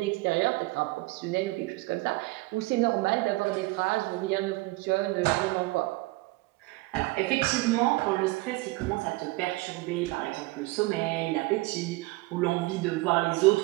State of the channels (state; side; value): quieter; left; 21.5 dB